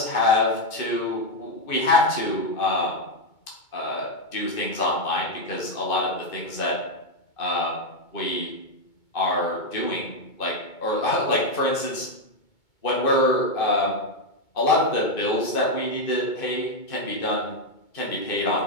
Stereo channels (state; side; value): late; right; 2.2 ms